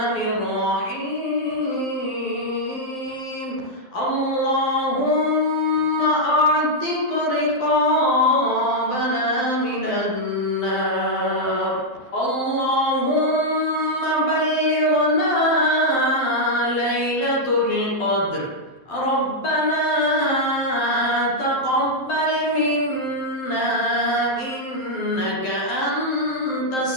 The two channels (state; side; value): late; right; 12 ms